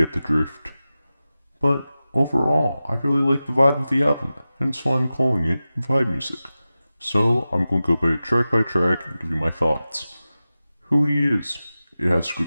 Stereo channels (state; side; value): inverted; both; correlation -0.95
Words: the drift. But overall, I really like the vibe of the album, hence why I'm calling it vibe music. So I'm going to go by track and give you my thoughts. Who he is. It has